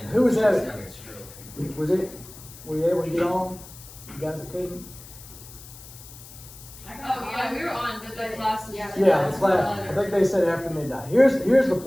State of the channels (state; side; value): noise; left; hiss, 18 dB below the sound